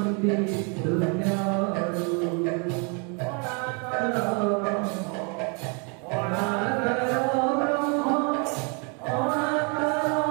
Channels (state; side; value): quieter; left; 35.9 dB